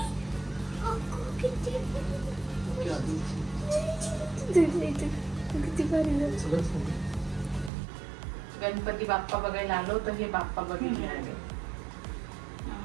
गणपती बाप्पा बघायला आलो तर हे बाप्पा बघायला आले.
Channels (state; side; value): drops out; left; at 7.7 s